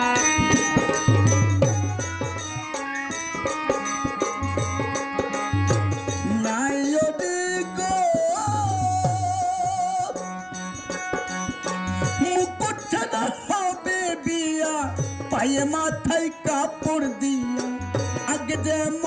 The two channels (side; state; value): both; identical; correlation 1.00